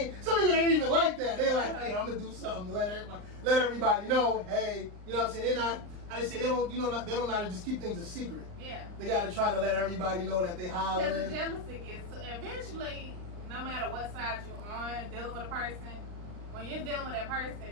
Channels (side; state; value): left; late; 39 ms